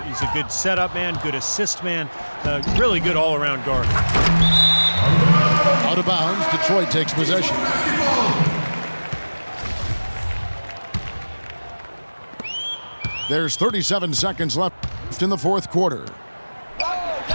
good setup man, good assist man, really good all-around guard. Out of bounds, Detroit takes possession. There's 37 seconds left in the fourth quarter.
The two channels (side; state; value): both; inverted; correlation -1.00